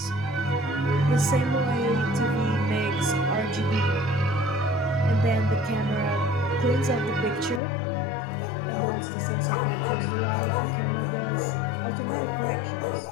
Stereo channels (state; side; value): drops out; right; at 7.6 s